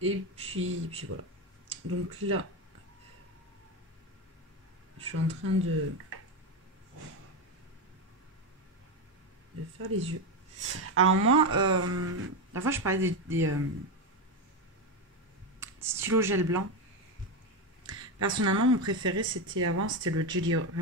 Et puis voilà. Donc là, je suis en train de faire les yeux. Alors moi, la fois je parlais des stylos gel blanc. Personnellement, mon préféré c'était le Jelly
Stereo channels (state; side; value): normal; both; correlation 0.12